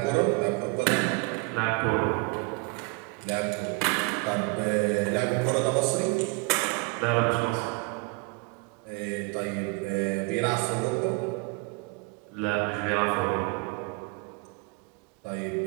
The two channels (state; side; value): quieter; left; 28.8 dB